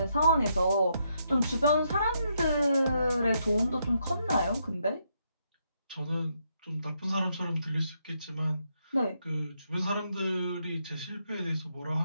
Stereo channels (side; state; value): both; inverted; correlation -0.78